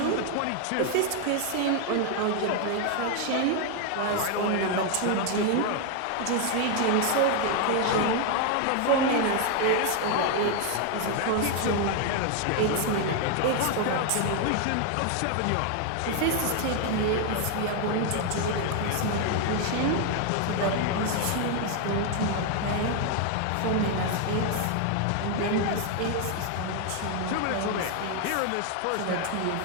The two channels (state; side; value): different; both; correlation 0.01